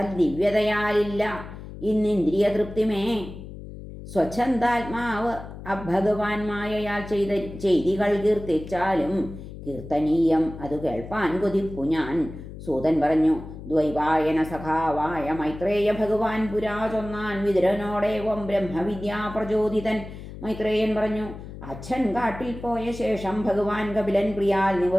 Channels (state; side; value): noise; left; hum, 13 dB below the sound